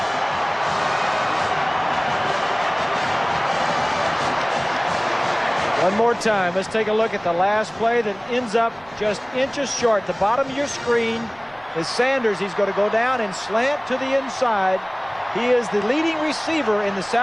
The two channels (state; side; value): noise; right; rumble, 27 dB below the sound